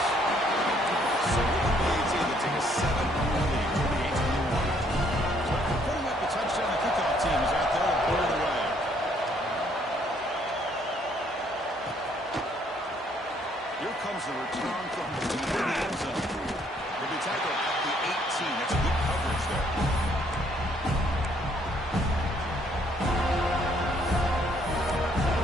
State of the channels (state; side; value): normal; both; correlation 0.66